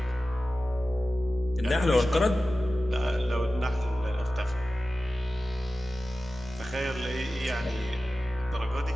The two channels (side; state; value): both; normal; correlation 0.95